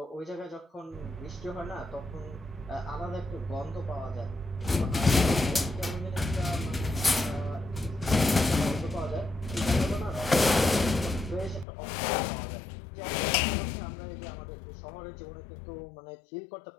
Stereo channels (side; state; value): right; drops out; at 11.7 s